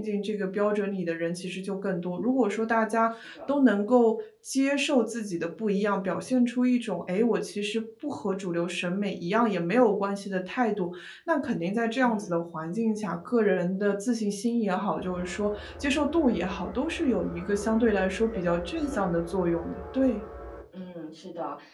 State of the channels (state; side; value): identical; both; correlation 1.00